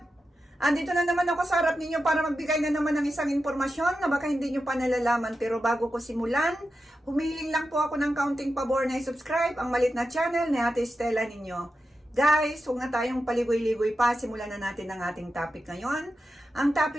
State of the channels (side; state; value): both; normal; correlation 0.90